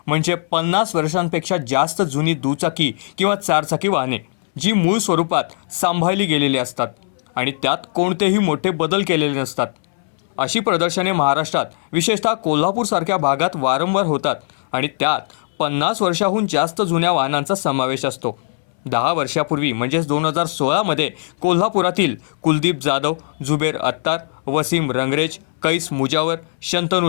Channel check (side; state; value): right; silent; 64 dB below the other